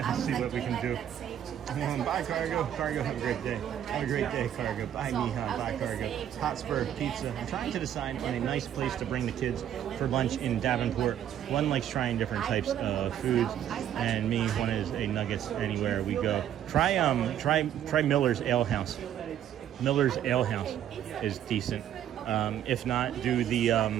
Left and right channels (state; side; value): quieter; left; 10.5 dB